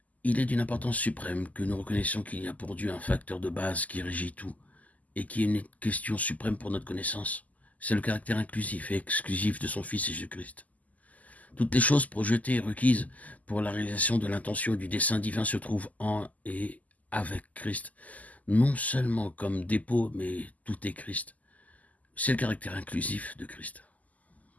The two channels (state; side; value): late; right; 0.076 ms